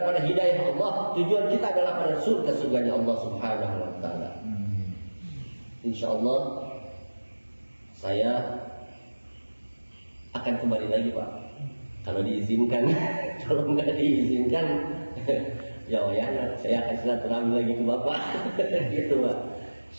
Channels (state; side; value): inverted; both; correlation -1.00